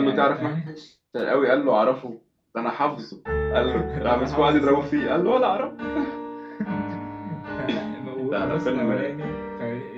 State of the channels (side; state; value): both; identical; correlation 1.00